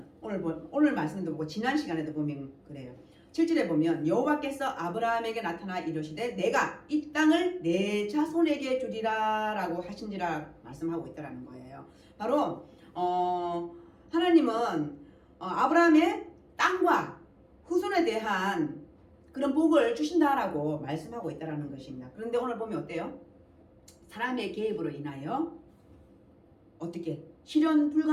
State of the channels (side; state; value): both; identical; correlation 1.00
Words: 오늘 말씀도 보고 지난 시간에도 보면 그래요. 7절에 보면 여호와께서 아브라함에게 나타나 이르시되 내가 이 땅을 내 자손에게 주리라 라고 하신지라 말씀하고 있다는 거예요. 바로 하나님은 아브라함의 땅과 후손에 대한 그런 복을 주신다라고 말씀하고 있다는 것입니다. 그런데 오늘 보면 어때요? 사람의 개입으로 인하여 어떻게 실현